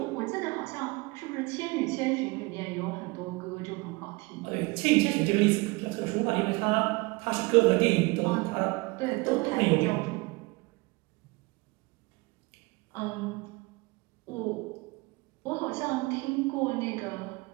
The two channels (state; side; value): quieter; left; 24.9 dB